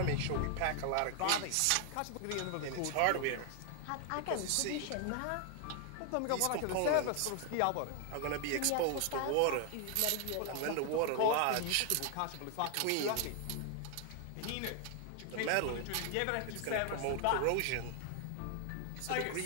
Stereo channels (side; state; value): both; different; correlation 0.00